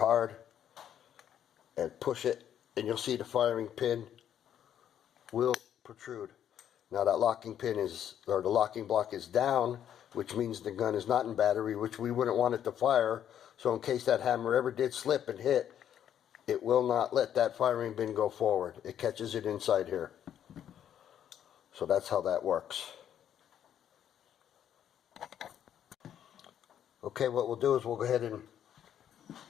and push it, and you'll see the firing pin will protrude. Now that locking pin is, or the locking block is down, which means the gun is not in battery, which we wouldn't want it to fire. So in case that hammer ever did slip and hit, it will not let that firing pin go forward. It catches it inside here. So that's how that works. Okay, what we'll do is we'll go ahead and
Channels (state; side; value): quieter; right; 9.9 dB